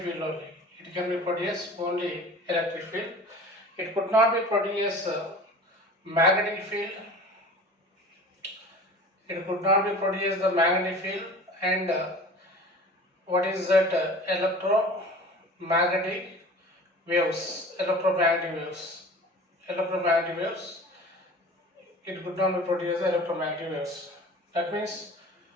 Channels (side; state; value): both; normal; correlation 0.41